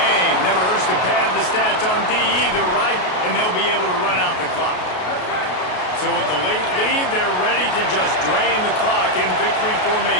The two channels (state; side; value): late; right; 33 ms